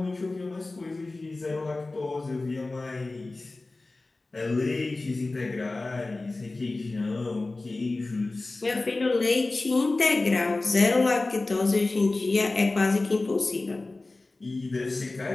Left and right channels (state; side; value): quieter; right; 3.2 dB